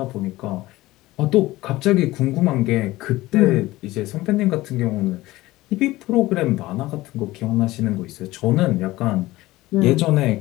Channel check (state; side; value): quieter; right; 18.2 dB